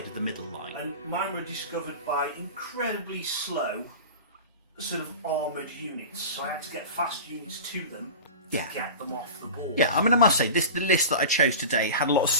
of the middle line. And mine were discovered by incredibly slow, sort of armoured units. So I had to get fast units to them to get them off the board. Yeah, I mean I must say the list that I chose today had a lot of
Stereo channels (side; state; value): both; inverted; correlation -0.33